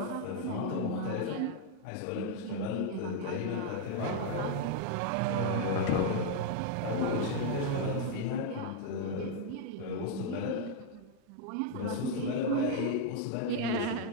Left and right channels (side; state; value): both; different; correlation 0.00